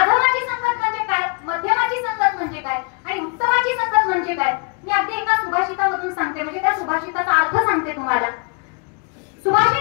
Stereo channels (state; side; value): quieter; right; 34.0 dB